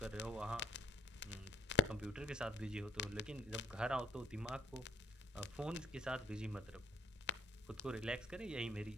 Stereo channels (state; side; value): normal; both; correlation 0.57